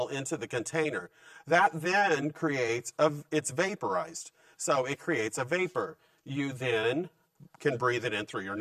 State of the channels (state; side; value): identical; both; correlation 1.00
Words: into the container. That then it's vaporized. So it creates a vapor. You then can breathe it in through your